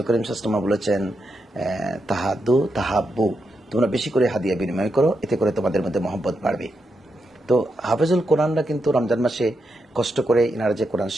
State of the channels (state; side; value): normal; both; correlation 0.84